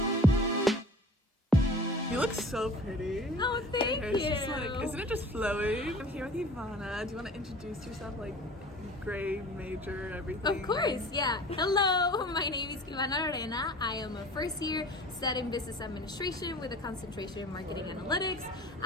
You look so pretty. Oh, thank you. Isn't it just flowing? I'm here with Ivana. Do you want to introduce yourself, like grade, major, everything? Of course, yeah. Hello, my name is Ivana Arena. I am a first year studying business administration with a concentration in marketing analytics.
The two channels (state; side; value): normal; both; correlation 0.43